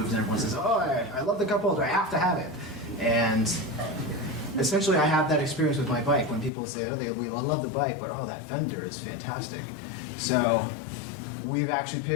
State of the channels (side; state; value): right; drops out; at 6.5 s